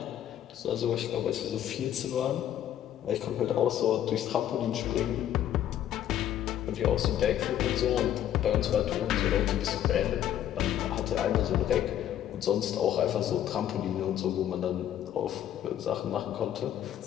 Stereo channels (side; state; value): right; quieter; 11.1 dB